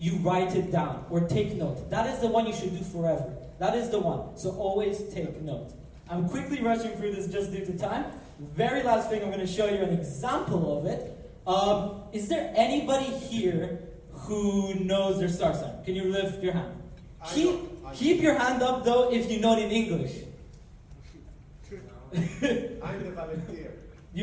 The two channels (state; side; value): identical; both; correlation 1.00